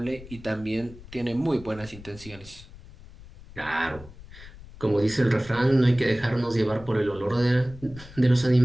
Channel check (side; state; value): left; noise; rumble, 18 dB below the sound